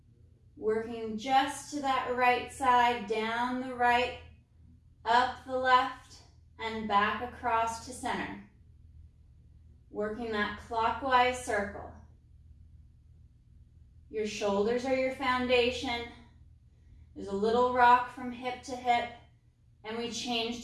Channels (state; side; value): identical; both; correlation 1.00